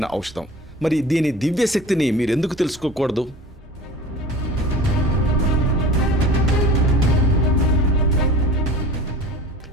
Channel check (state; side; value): normal; both; correlation 0.39